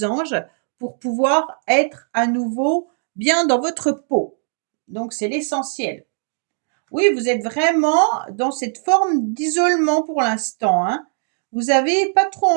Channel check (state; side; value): silent; left; digital silence